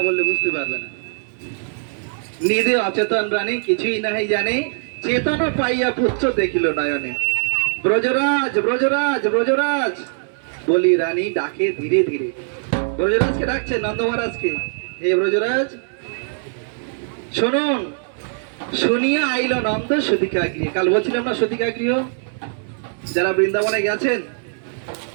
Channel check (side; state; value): left; silent; digital silence